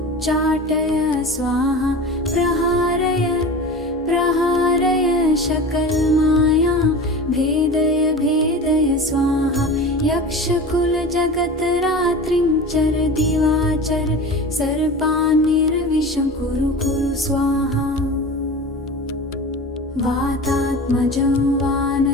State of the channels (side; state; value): both; normal; correlation 0.33